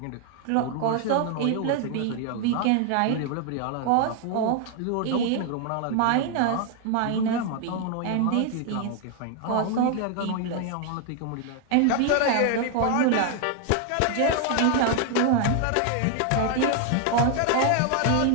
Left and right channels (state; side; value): different; both; correlation 0.00